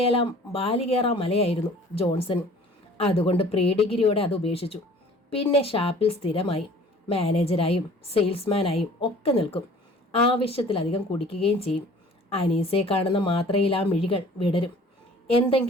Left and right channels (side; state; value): both; normal; correlation 0.49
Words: മലയായിരുന്നു ജോൺസൺ. അതുകൊണ്ട് പ്രീ ഡിഗ്രിയോടെ അത് ഉപേക്ഷിച്ചു. പിന്നെ ഷാപ്പിൽ സ്ഥിരമായി മാനേജരായും സെയിൽസ്മാനായും ഒക്കെ നിൽക്കും. ആവശ്യത്തിലധികം കുടിക്കുകയും ചെയ്യും. അനീസയെ കാണുന്ന മാത്രയിൽ ആ മിഴികൾ വിടരും.